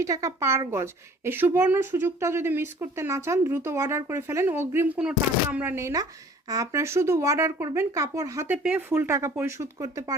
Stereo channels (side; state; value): both; normal; correlation 0.51